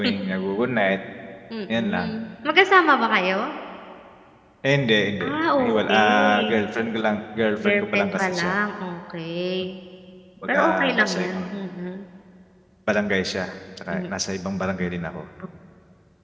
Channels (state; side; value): identical; both; correlation 1.00